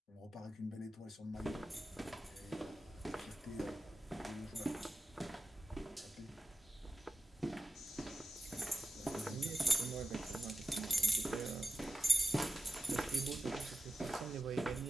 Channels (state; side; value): normal; both; correlation 0.93